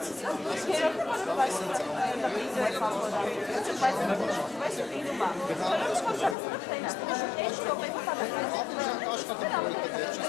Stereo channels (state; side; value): drops out; right; at 6.4 s